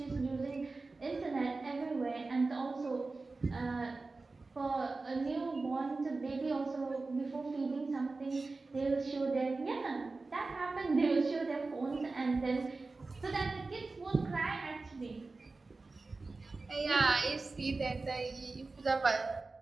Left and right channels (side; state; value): left; quieter; 3.6 dB